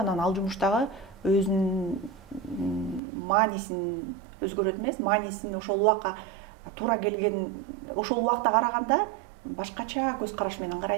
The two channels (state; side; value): drops out; left; at 3.0 s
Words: ал жумуштагы өзүнүн маанисин өзгөрөт эмес, маанисин ошол убакка туура келген, ошол убакта караганда башкача көз караш менен